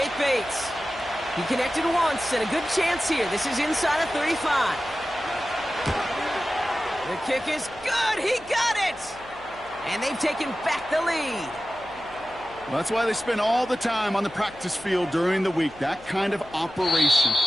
Bates. He connected once and a good chance here. This is inside of 35. The kick is good. He got it. And they've taken back the lead. Well, that's why they spend all the time on the practice field during the week. That kind of operation.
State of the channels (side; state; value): left; noise; hum, 22 dB below the sound